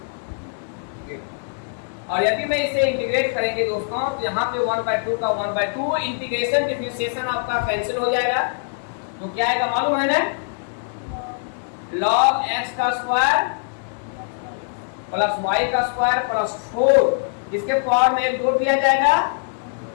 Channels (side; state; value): right; silent; digital silence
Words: और यदि मैं इसे इंटीग्रेट करेंगे दोस्तों, तो यहाँ पे 1/2 का 1/2 इंटीग्रेशन डिफरेंशिएशन आपका कैंसिल हो जाएगा। तो क्या आएगा मालूम है ना, log x का स्क्वायर प्लस y का स्क्वायर प्लस 4, इसके पावर में एक जोड़ दिया जाएगा